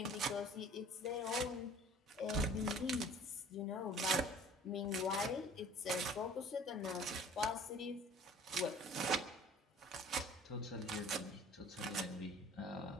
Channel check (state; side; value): normal; both; correlation 0.49